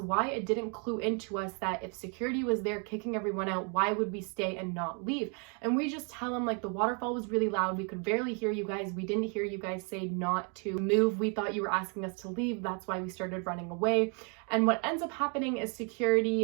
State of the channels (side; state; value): left; quieter; 37.7 dB